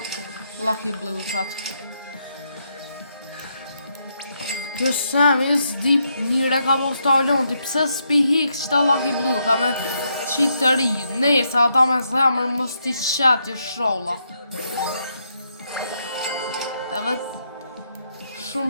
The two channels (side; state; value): both; inverted; correlation -0.78